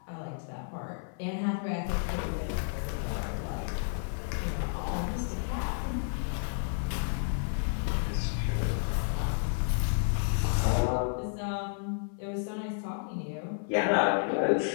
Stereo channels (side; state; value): right; silent; 57 dB below the other